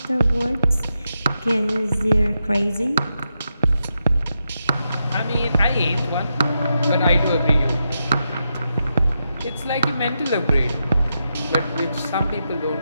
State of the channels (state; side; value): inverted; both; correlation -0.86